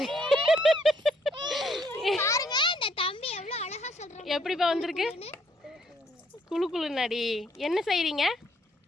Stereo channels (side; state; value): both; normal; correlation 0.68